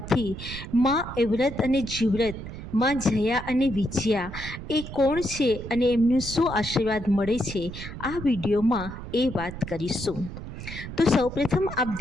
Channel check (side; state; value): right; noise; rumble, 10 dB below the sound